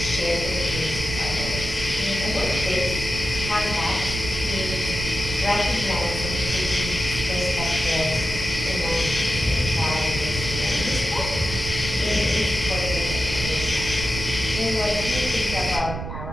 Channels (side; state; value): right; noise; rumble, 7 dB below the sound